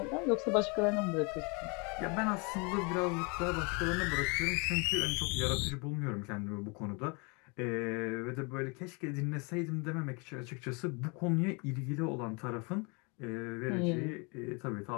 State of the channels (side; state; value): right; quieter; 31.6 dB